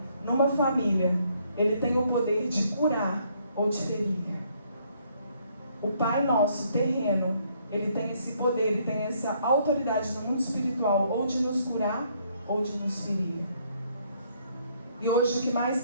numa família, Ele tem o poder de curar ou de ferir. O Pai nosso, terreno, Ele tem esse poder, Ele tem essa autoridade no mundo espiritual, ou de nos curar, ou de nos ferir. E hoje o que mais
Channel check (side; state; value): both; inverted; correlation -0.68